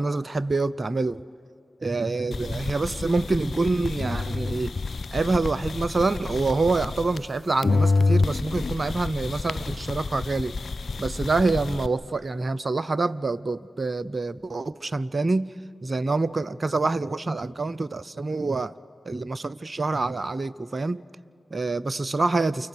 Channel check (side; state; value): both; normal; correlation 0.93